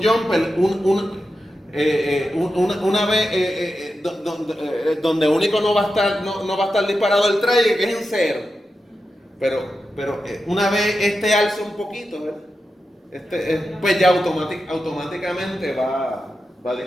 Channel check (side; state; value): both; normal; correlation 0.90